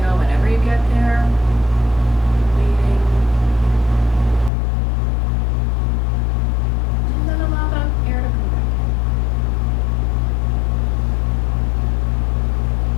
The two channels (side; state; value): right; drops out; at 4.5 s